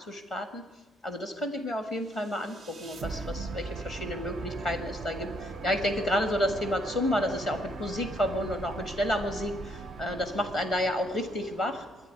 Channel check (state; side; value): normal; both; correlation 0.69